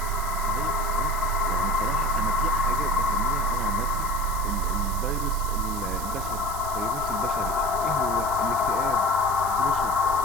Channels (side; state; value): right; noise; hiss, 11 dB below the sound